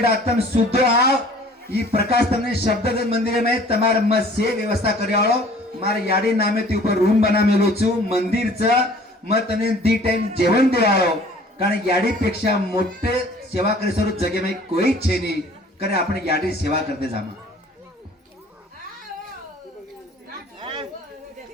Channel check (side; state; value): both; normal; correlation 0.51